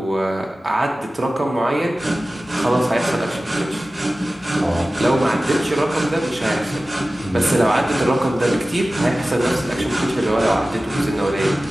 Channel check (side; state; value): both; normal; correlation 0.96